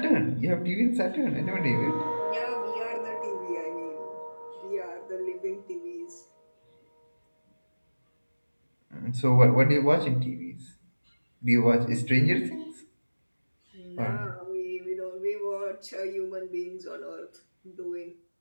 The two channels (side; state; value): both; inverted; correlation -1.00